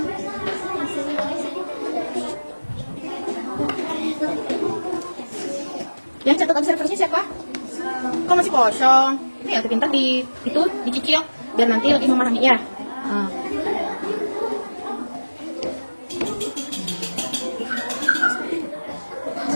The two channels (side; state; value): both; inverted; correlation -1.00